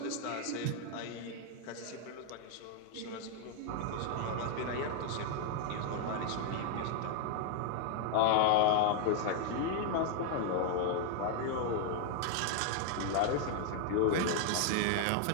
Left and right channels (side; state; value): both; different; correlation 0.00